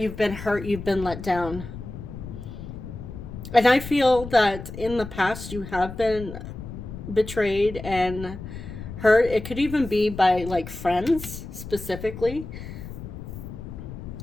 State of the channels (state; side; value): noise; left; rumble, 10 dB below the sound